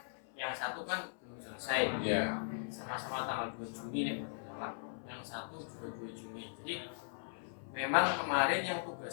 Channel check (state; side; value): silent; right; 52 dB below the other